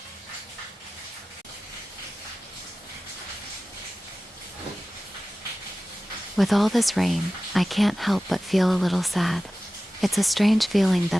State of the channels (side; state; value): both; normal; correlation 0.96